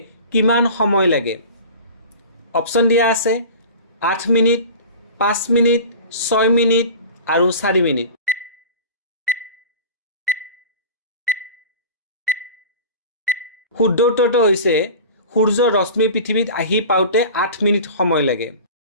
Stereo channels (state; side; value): inverted; both; correlation -0.37